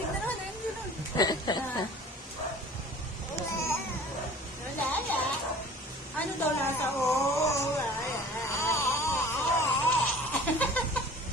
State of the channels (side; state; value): both; normal; correlation 0.45